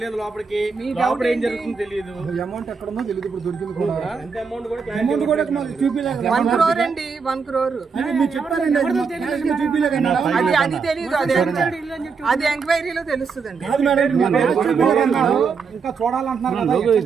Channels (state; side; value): quieter; left; 5.4 dB